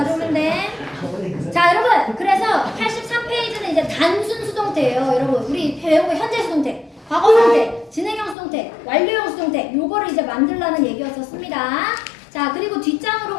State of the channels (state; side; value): drops out; right; at 8.3 s